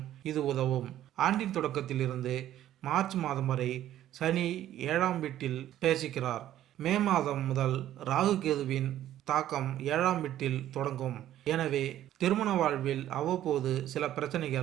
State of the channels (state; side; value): quieter; left; 12.5 dB